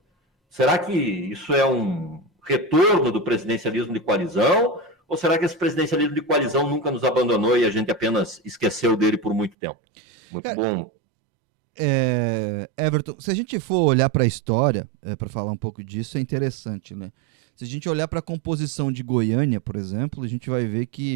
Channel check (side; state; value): left; drops out; at 9.6 s